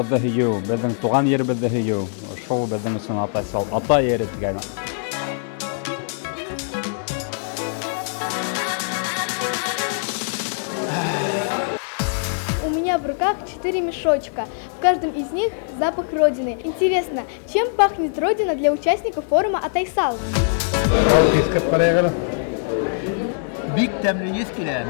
һөйөү, безнең туган еребезде һөйөү. Шул безнең өсөн Атайсал, ата ере дигән. У меня в руках 4 мешочка. В каждом из них запах Родины. Интересно, чем пахнет Родина для участников форума Атайсал? Бик тәмле ес килә.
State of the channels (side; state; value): right; silent; digital silence